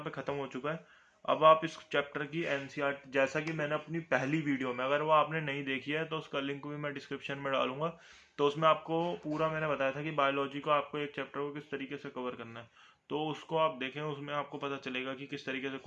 पे खत्म हो चुका है। अब आप इस चैप्टर की एनसीईआरटी, जैसा कि मैंने अपनी पहली वीडियो में, अगर वो आपने नहीं देखी है तो उसका लिंक भी मैं डिस्क्रिप्शन में डालूंगा। तो उसमें आपको पूरा मैंने बताया था कि बायोलॉजी को आपको एक चैप्टर को किस तरीके से कवर करना है। तो उसको आप देखें, उसमें आपको पता चलेगा कि किस तरीके से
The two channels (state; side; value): identical; both; correlation 1.00